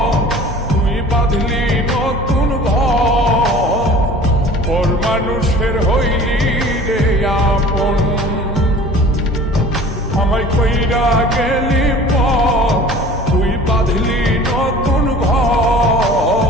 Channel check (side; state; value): both; normal; correlation 0.45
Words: তুই বাঁধলি নতুন ঘর, পর মানুষের হইলি রে আপন। আমায় কইরা গেলি তুই বাঁধলি নতুন